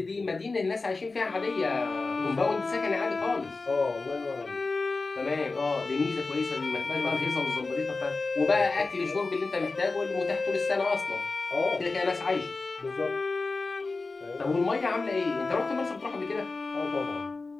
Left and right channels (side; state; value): right; quieter; 3.7 dB